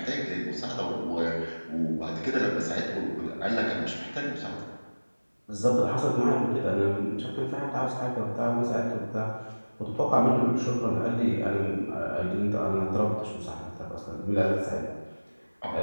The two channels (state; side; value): inverted; both; correlation -1.00